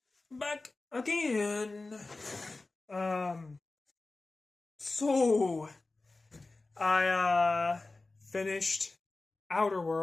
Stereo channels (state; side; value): quieter; right; 3.4 dB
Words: back again. Um, so I finished Outer